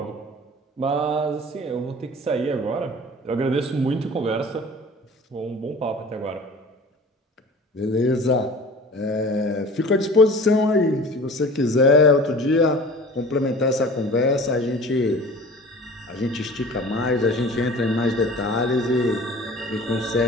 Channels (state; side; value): normal; both; correlation 0.41